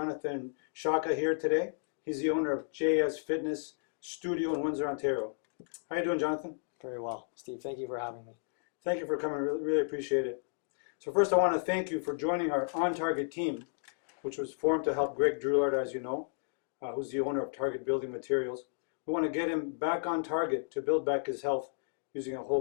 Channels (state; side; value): silent; right; digital silence